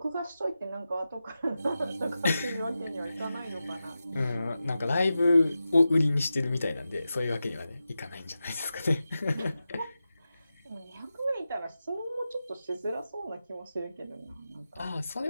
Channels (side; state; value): both; inverted; correlation -0.92